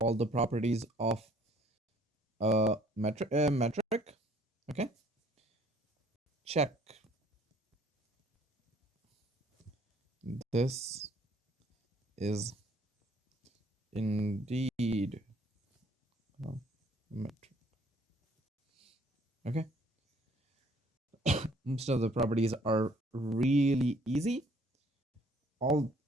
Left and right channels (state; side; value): normal; both; correlation 0.60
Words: the properties of a metric. Okay? Check. This is indeed a metric. Okay? Most of the properties are really easy. All